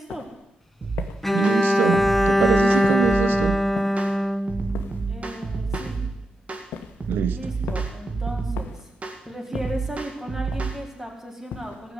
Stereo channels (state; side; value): normal; both; correlation 0.87